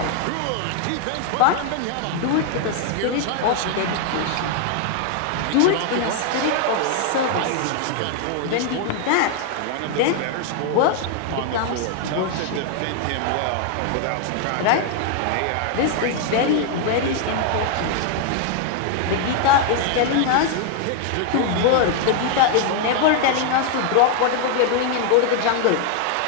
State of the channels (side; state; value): both; different; correlation 0.00